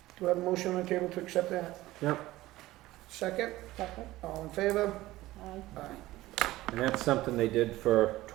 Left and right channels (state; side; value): quieter; left; 17.2 dB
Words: Do I have a motion on the table to accept that? Yep, Second? Second. All in favor? Aye. Aye. and that's something they did for